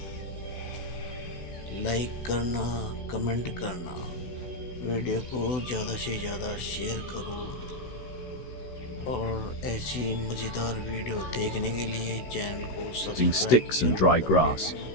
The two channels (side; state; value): right; late; 16 ms